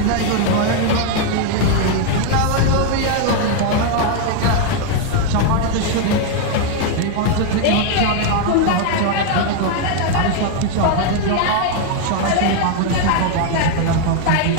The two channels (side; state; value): both; different; correlation 0.01